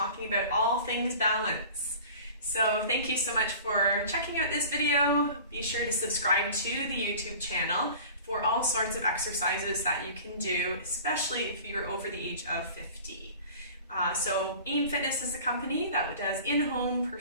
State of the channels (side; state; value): both; inverted; correlation -0.42